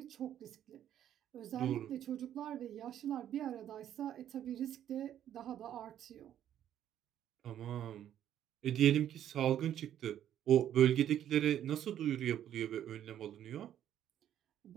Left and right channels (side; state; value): left; quieter; 10.7 dB